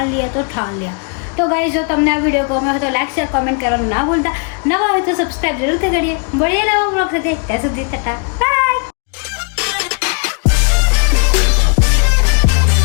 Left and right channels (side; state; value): right; quieter; 38.3 dB